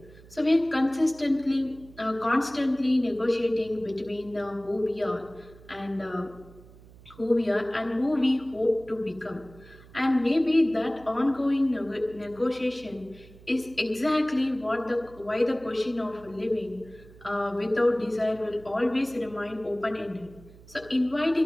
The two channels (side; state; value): right; noise; hum, 22 dB below the sound